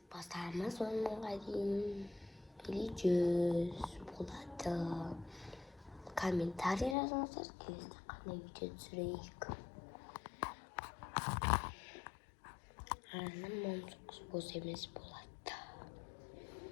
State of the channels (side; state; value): right; drops out; at 7.0 s